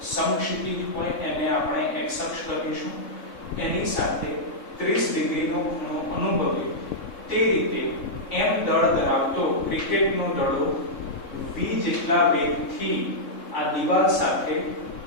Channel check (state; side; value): late; right; 3.7 ms